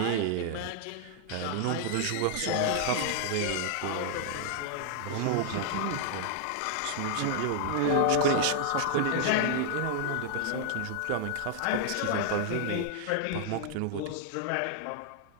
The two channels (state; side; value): different; both; correlation 0.00